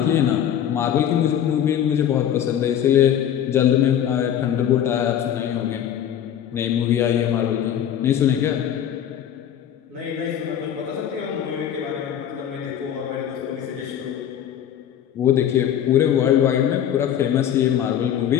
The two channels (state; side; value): quieter; right; 9.9 dB